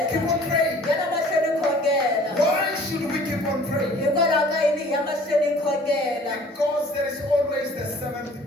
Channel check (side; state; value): both; normal; correlation 0.51